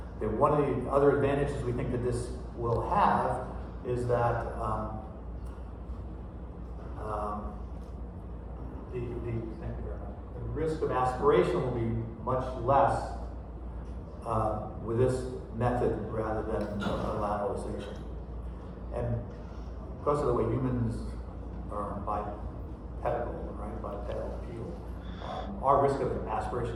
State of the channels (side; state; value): both; identical; correlation 1.00